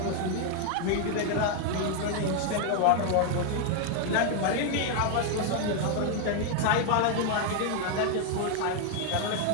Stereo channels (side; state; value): both; different; correlation 0.01